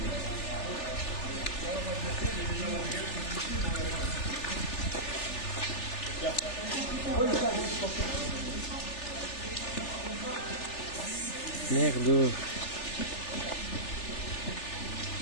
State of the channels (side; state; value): right; late; 3.4 ms